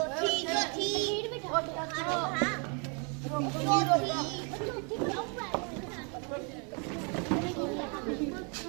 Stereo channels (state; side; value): quieter; left; 36.0 dB